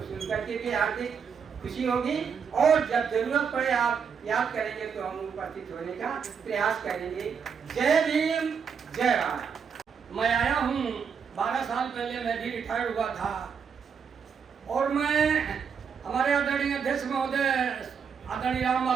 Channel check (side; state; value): left; quieter; 6.6 dB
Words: सुनकर के भी हार्दिक खुशी होगी और जब जरूरत पड़े आप याद करेंगे तो हम उपस्थित होने का प्रयास करेंगे। जय भीम, जय भारत। मैं आया हूँ, 12 साल पहले मैं भी रिटायर्ड हुआ था और मैं हमारे आदरणीय अध्यक्ष महोदय आदरणीय राम